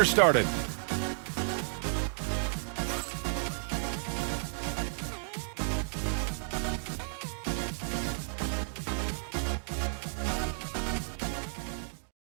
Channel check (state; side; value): silent; left; digital silence